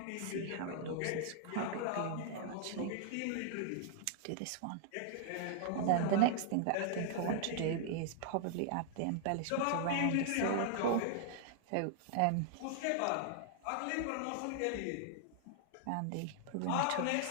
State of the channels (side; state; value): both; different; correlation -0.01